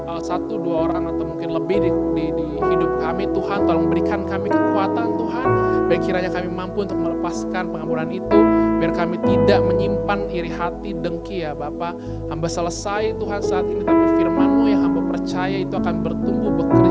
orang atau mungkin lebih di hidup kami, Tuhan tolong berikan kami kekuatan Tuhan, biar kiranya kami mampu untuk melepaskan pengampunan itu, biar kami tidak menyimpan iri hati, dengki ya Bapa. Hamba selesai Tuhan saat ini, tapi firman-Mu yang hamba percaya itu akan bertumbuh,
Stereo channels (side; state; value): both; identical; correlation 1.00